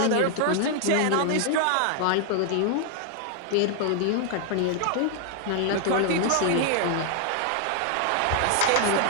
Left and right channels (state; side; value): different; both; correlation 0.00